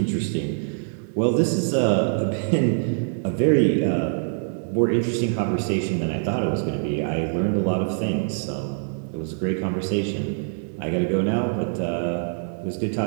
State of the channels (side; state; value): left; silent; digital silence